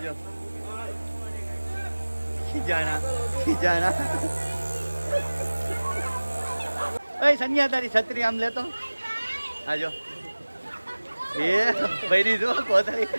ખીજાણા ઓય સન્યા તારી છત્રી આમ લેતો આજો એ ભરી દો કોતરી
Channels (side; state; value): both; inverted; correlation -1.00